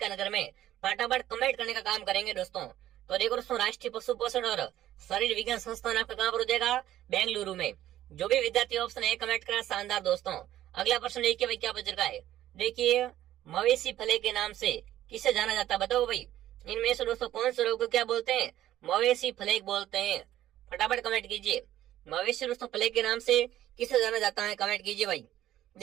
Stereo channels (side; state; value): left; quieter; 13.1 dB